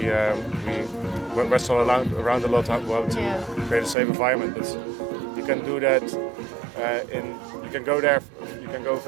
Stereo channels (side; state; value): left; drops out; at 4.0 s